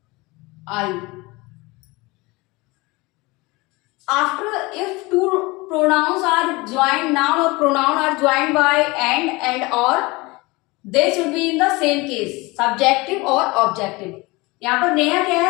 I. After, if two pronouns are joined, noun or pronoun are joined by and or, they should be in the same case, subjective or objective. यहाँ पर नेहा क्या है,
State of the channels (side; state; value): right; quieter; 23.6 dB